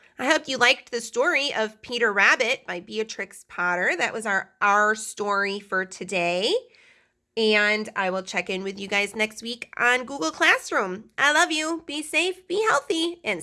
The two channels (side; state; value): both; identical; correlation 1.00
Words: I hope you liked the story of Peter Rabbit by Beatrix Potter. That was our story for today. And I will check in with you guys next week on Google Classroom. I love you. Be safe, be healthy, and